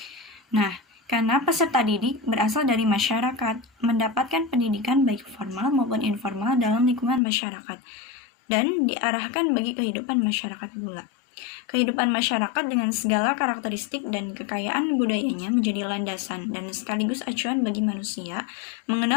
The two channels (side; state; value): right; drops out; at 7.2 s